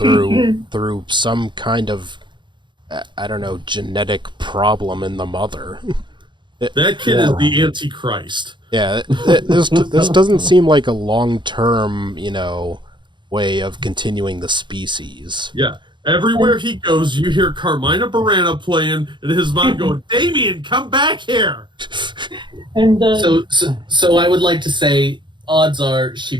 some kind of, I don't know, genetic problem in the mother. That kid is the Antichrist. Yeah, this doesn't seem like a long-term, way of continuing the species. Yeah. Everywhere he goes, you hear Carmina Burana playing, and his mom going, "Damien, come back here." And So I would like to say, odds are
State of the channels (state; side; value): late; left; 0.23 ms